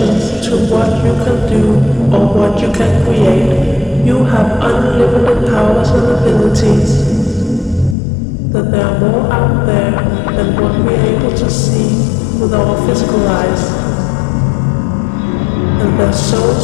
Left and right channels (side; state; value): right; drops out; at 8.0 s